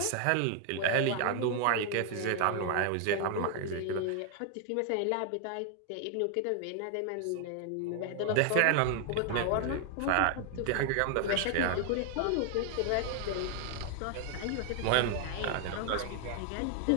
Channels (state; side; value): different; both; correlation 0.00